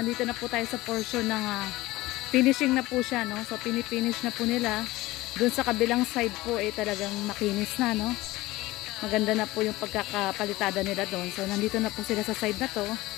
na po tayo sa portion ng finishing na po siya, no? So pinifinish na po nila. Doon sa kabilang side po talagang makinis na, no? Maganda na po yung pagkakapalitada nila doon. So nandito na po sila sa side na to.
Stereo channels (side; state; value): right; quieter; 18.8 dB